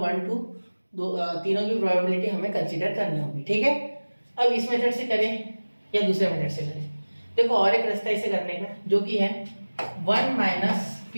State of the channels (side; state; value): both; inverted; correlation -1.00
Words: 1 2 तीनों की प्रोबेबिलिटी हमें कंसीडर करनी होगी, ठीक है। अब इस मेथड से करें या दूसरे मेथड से करें, देखो और एक रास्ता इसे करने का, जो कि है 1 माइनस